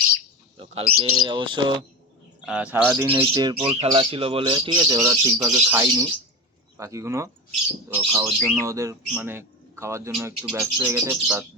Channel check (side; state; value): both; normal; correlation 0.22